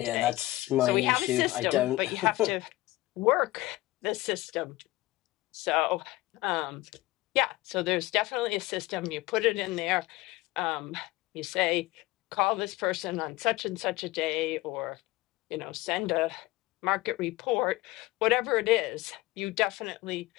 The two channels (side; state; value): right; quieter; 19.0 dB